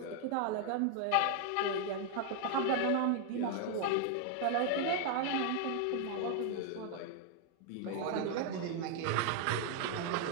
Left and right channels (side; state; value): both; different; correlation 0.00